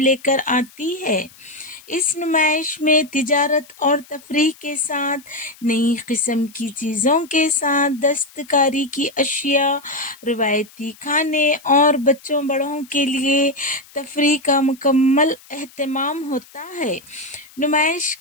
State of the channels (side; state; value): left; noise; hiss, 24 dB below the sound